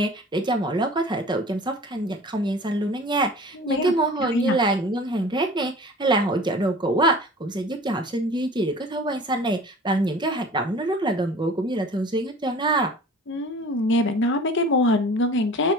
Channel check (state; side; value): normal; both; correlation 0.43